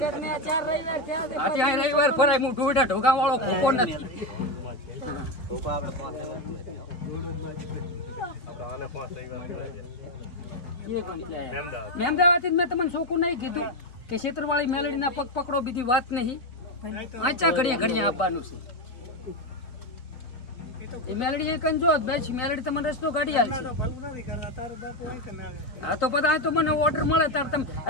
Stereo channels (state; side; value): late; right; 4.0 ms